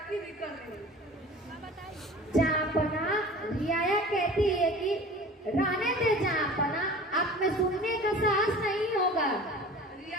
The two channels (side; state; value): both; normal; correlation 0.40